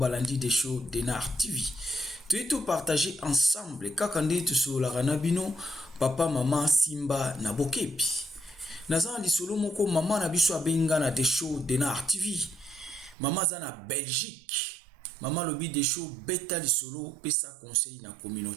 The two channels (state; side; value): drops out; left; at 13.2 s